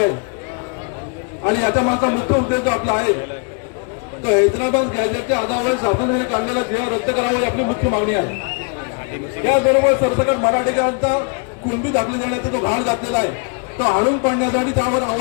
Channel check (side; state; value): right; quieter; 36.5 dB